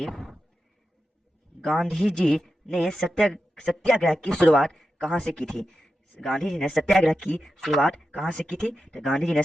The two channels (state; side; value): normal; both; correlation 0.90